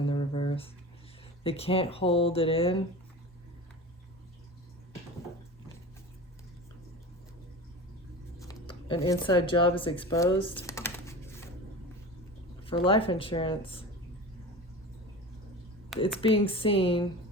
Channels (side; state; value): both; normal; correlation 0.32